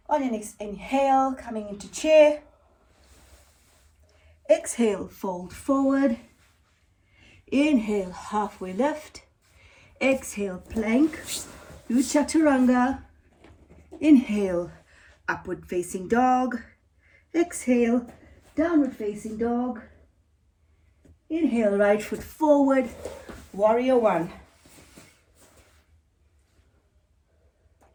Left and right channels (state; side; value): identical; both; correlation 1.00